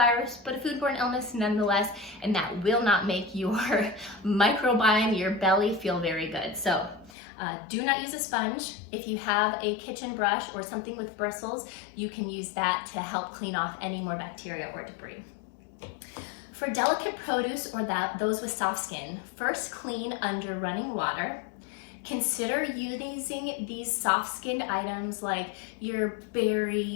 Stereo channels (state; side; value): drops out; right; at 7.1 s